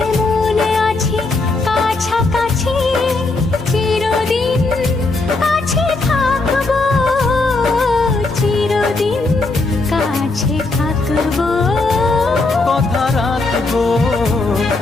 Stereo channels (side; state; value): right; quieter; 3.4 dB